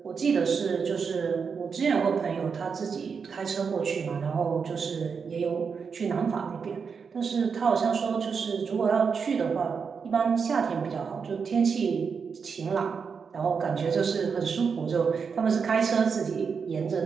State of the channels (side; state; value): left; quieter; 5.8 dB